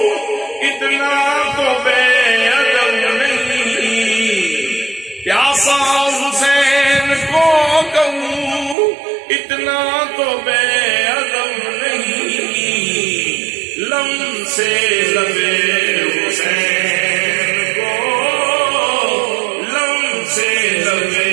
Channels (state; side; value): drops out; left; at 8.8 s